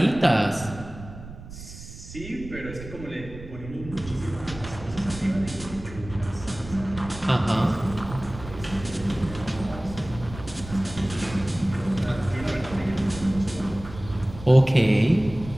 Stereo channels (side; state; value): right; noise; rumble, 14 dB below the sound